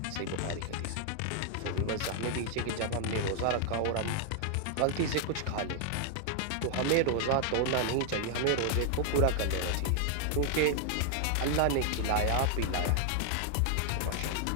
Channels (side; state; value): both; different; correlation 0.00